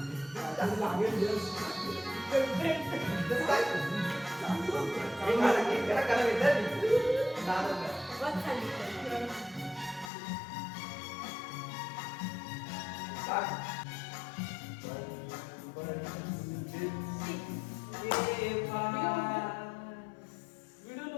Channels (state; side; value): drops out; right; at 10.1 s